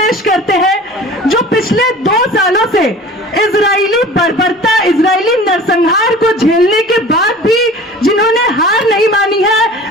पेश करते हैं जो पिछले 2 सालों से इजरायली बर्बरता, इजरायली नरसंहार को झेलने के बाद भी जिन्होंने हार नहीं मानी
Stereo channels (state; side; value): normal; both; correlation 0.42